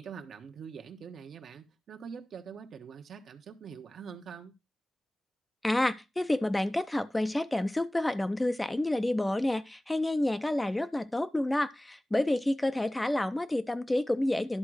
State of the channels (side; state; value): both; normal; correlation 0.98